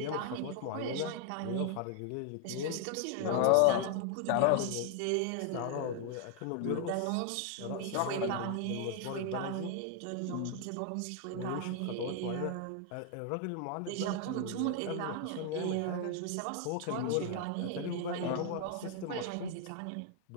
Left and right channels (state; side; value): different; both; correlation 0.00